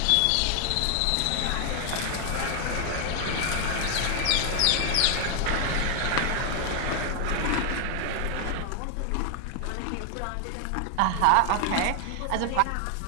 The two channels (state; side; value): different; both; correlation 0.00